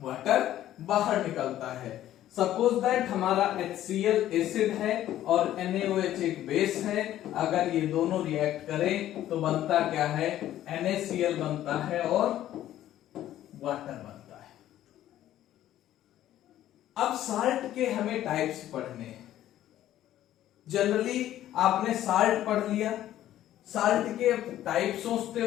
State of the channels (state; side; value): quieter; right; 12.8 dB